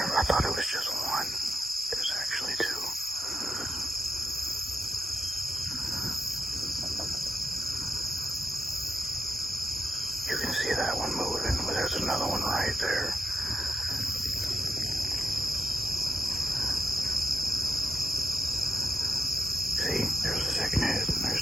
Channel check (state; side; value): normal; both; correlation 0.86